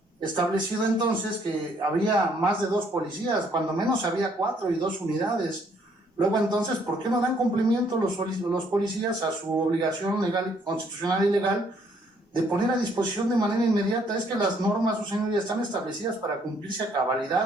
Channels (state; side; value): normal; both; correlation 0.66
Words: establecido entonces que había más de 2 policías, cuando menos había 4 y 2 unidades. Luego entonces, ¿por qué no dan cumplimiento los policías a su obligación legal, constitucional y legal de poner a disposición de manera inmediata? Es que las normas, su señoría, están establecidas para cumplirse a